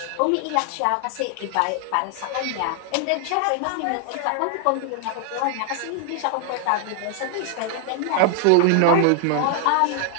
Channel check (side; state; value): both; different; correlation 0.00